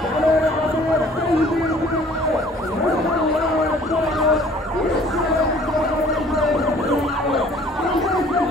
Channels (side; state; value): both; normal; correlation 0.54